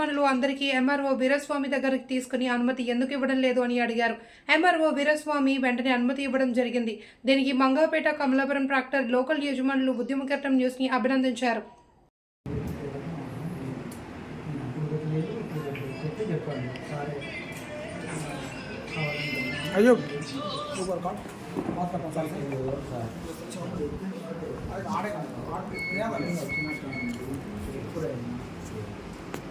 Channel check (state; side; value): identical; both; correlation 1.00